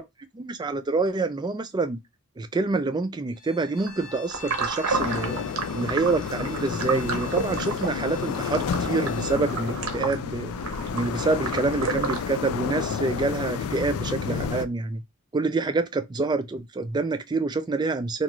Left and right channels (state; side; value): normal; both; correlation 0.42